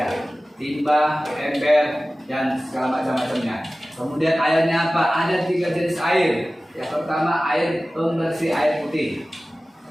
Timba, ember, dan segala macam-macamnya. Kemudian airnya apa? Ada 3 jenis air. Yang pertama air pembersih air putih.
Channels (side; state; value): both; normal; correlation 0.97